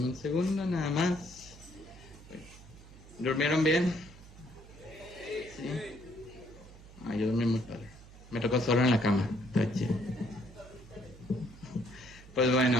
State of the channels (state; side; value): noise; right; hum, 19 dB below the sound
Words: un segundo nada más. ¿Durmieron bien? Sí. Yo dormí muy padre. Me tocó solo en la cama. Está chido. Pues